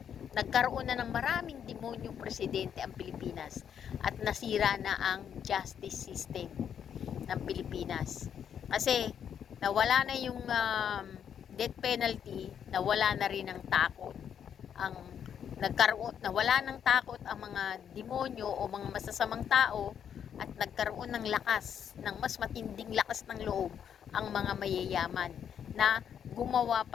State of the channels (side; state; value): right; quieter; 8.5 dB